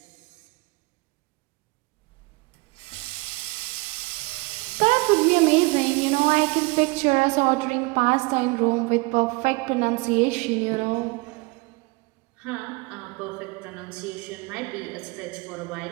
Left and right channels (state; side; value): quieter; left; 26.0 dB